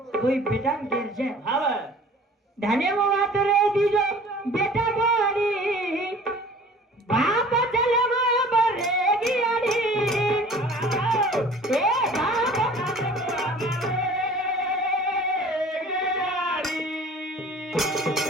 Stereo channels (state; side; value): normal; both; correlation 0.47